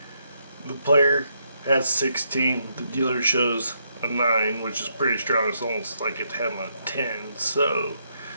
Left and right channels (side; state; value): both; inverted; correlation -0.76